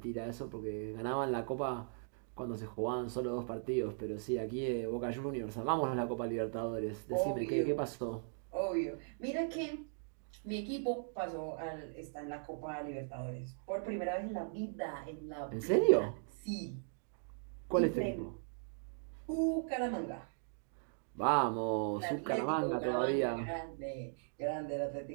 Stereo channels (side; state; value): left; silent; digital silence